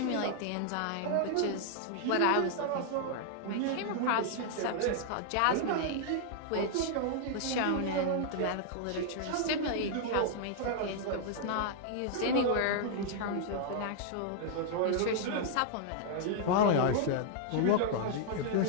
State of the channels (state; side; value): different; both; correlation -0.01